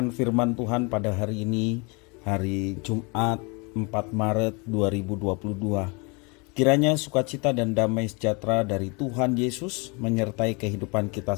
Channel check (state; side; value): quieter; right; 30.6 dB